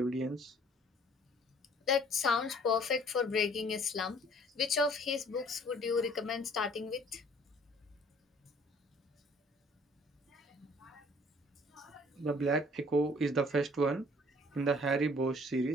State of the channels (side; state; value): both; normal; correlation 0.56